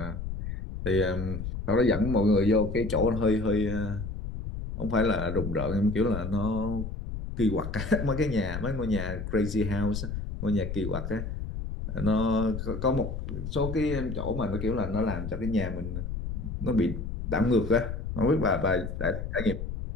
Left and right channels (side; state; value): left; noise; rumble, 6 dB below the sound